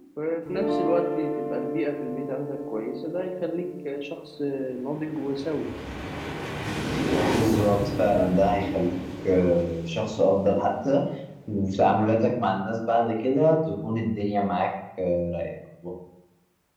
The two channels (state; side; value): identical; both; correlation 1.00